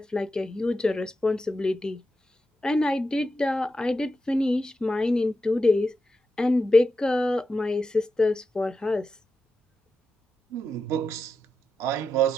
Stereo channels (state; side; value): normal; both; correlation 0.88